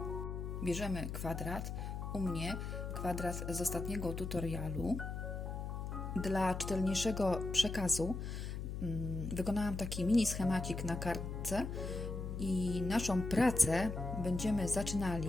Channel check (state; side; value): noise; left; hum, 5 dB below the sound